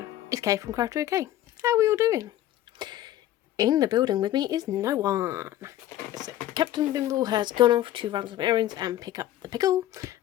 it's Kay from Craft OK. How are we all doing? In the building with me is no one. So Captain Bimble has gone off to run some errands and pick up the Pickle,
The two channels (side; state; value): right; quieter; 13.4 dB